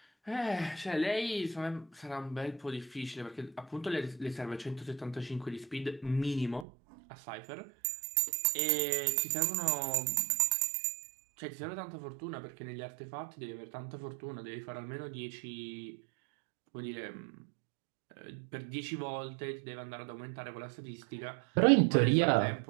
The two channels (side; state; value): left; drops out; at 6.7 s